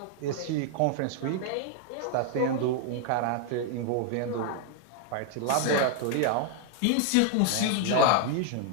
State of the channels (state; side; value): different; both; correlation 0.00